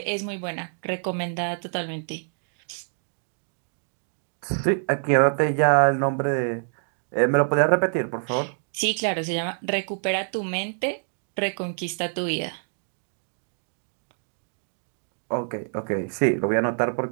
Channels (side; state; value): left; silent; digital silence